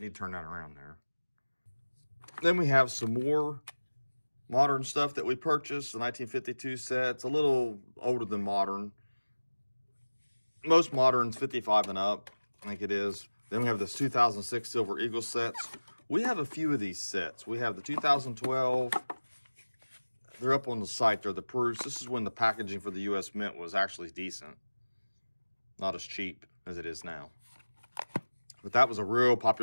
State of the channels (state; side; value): inverted; both; correlation -1.00